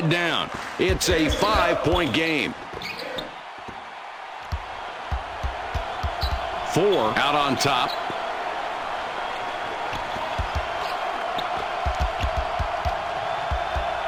down. It's a 5-point game. 4 out on top.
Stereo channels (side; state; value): both; identical; correlation 1.00